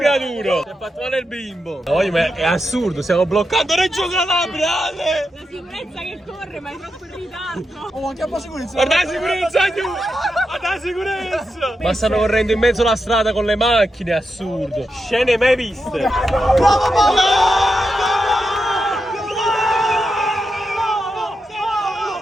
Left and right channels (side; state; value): both; normal; correlation 0.87